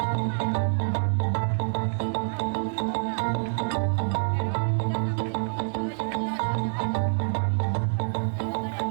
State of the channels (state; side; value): silent; left; digital silence